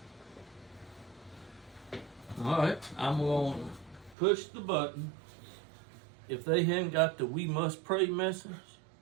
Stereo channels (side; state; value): left; drops out; at 4.2 s